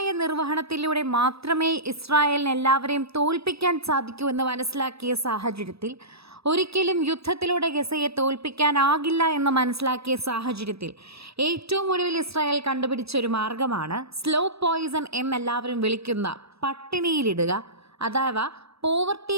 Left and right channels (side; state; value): left; late; 0.78 ms